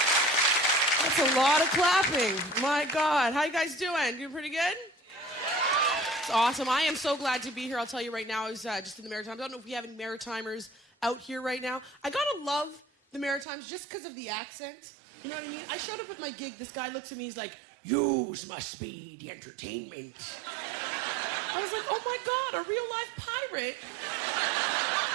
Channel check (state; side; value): drops out; left; at 13.5 s